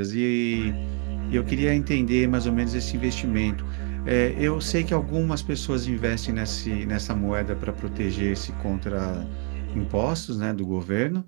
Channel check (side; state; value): left; quieter; 38.8 dB